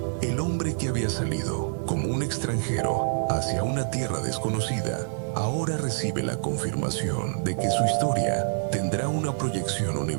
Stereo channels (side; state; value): left; silent; digital silence